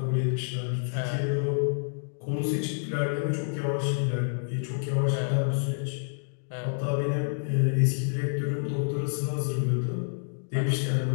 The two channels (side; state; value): right; silent; digital silence